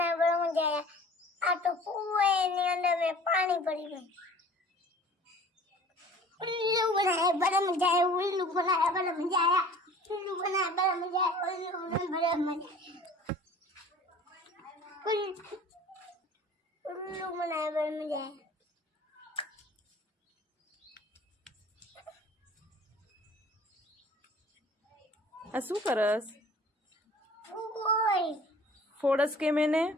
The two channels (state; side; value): normal; both; correlation 0.47